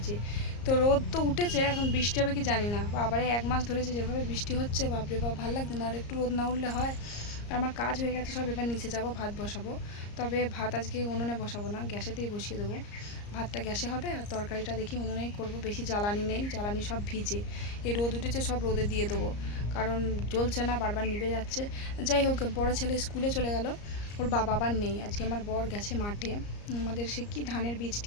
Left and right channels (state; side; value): late; right; 34 ms